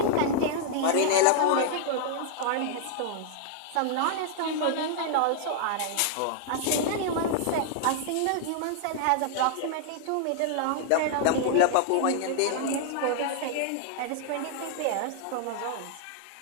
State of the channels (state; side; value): different; both; correlation -0.01